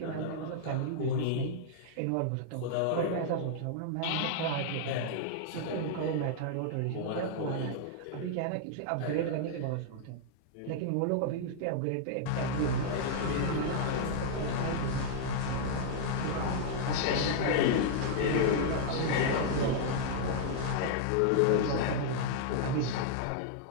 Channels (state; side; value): different; both; correlation -0.01